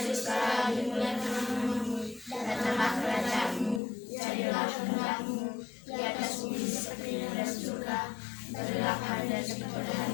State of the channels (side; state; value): right; drops out; at 3.8 s